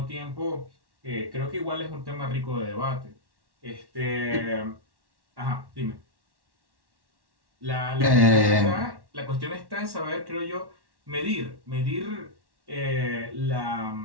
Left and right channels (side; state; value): left; late; 1.1 ms